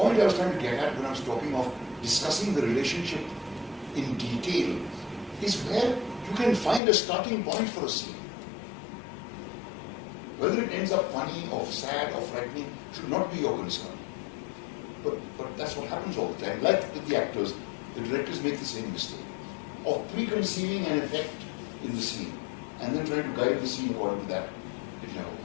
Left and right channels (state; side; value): drops out; right; at 6.8 s